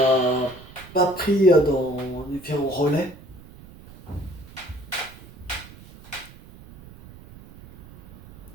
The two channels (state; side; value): noise; right; rumble, 19 dB below the sound